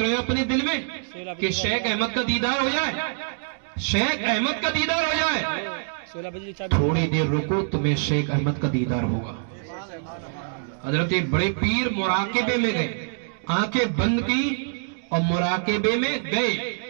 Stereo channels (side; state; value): left; silent; digital silence